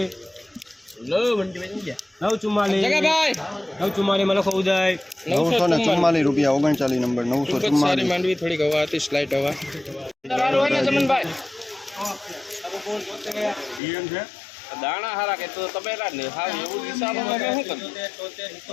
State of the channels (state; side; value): drops out; right; at 13.8 s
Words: લો મંડી બની ગયા 944 જગા ભાઈ 944 મને ખો ઉદય 944 રૂપિયા 39 નંબર 944 માંડવી થોડી હવા હતી સ્લાઇટ હવા હાલો ને જમણ ભાઈ નિયમ છે દાણા હારા કે તો તબેલા ને હાવ એવું હિસાબમાં શું કરું